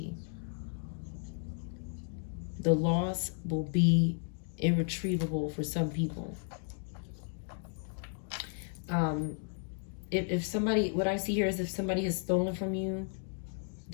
The loss will be irretrievable for some people. If somebody, what I see here is if somebody has stolen from you,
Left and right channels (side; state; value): right; silent; 55 dB below the other